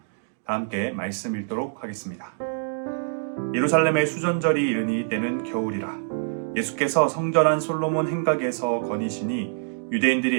다 함께 말씀 읽도록 하겠습니다. 예루살렘의 수전절이 이르니 때는 겨울이라. 예수께서 성전한 솔로몬 행각에서 거니시니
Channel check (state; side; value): silent; left; digital silence